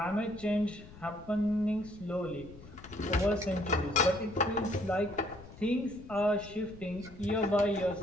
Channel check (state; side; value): noise; left; rumble, 18 dB below the sound